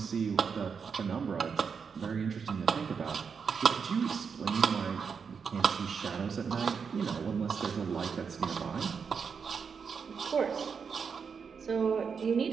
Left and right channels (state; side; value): quieter; left; 6.1 dB